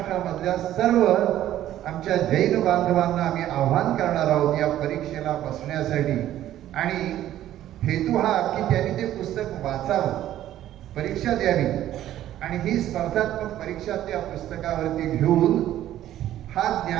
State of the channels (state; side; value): quieter; left; 12.7 dB